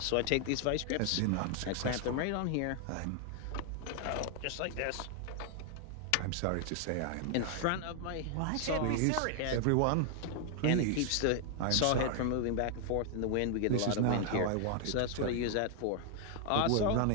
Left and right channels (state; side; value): different; both; correlation 0.00